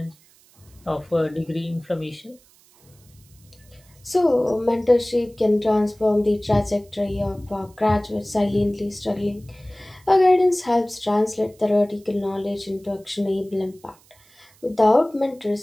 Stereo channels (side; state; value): right; noise; hiss, 29 dB below the sound